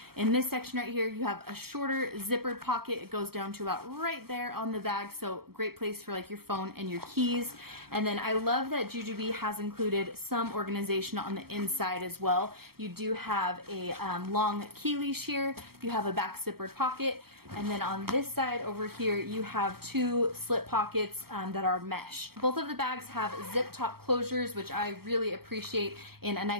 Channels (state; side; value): late; left; 0.95 ms